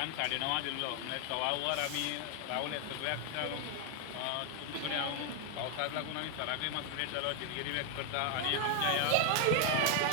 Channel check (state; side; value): different; both; correlation 0.00